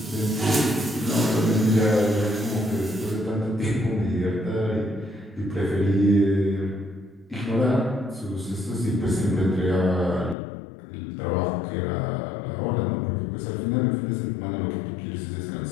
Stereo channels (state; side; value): drops out; right; at 10.4 s